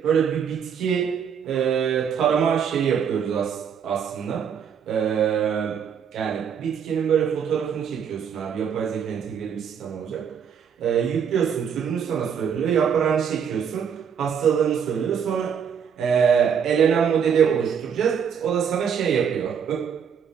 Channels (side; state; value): left; quieter; 7.5 dB